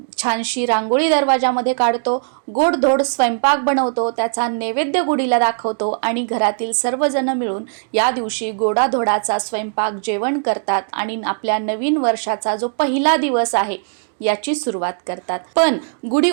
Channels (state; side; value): silent; left; 61 dB below the other